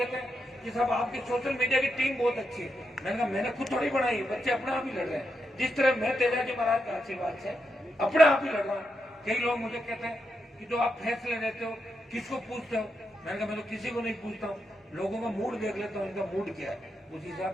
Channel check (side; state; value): both; normal; correlation 0.84